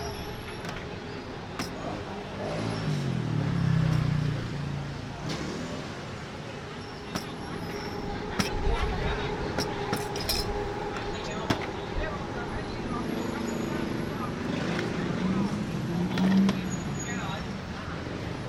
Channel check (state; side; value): identical; both; correlation 1.00